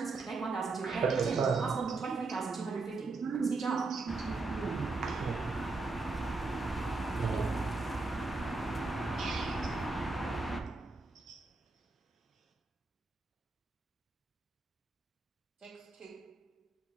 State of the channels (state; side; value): quieter; left; 3.7 dB